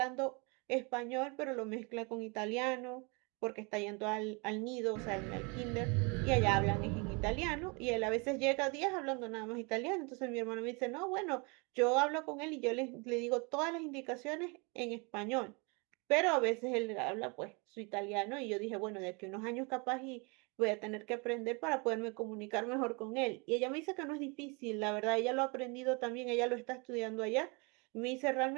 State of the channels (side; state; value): left; quieter; 30.9 dB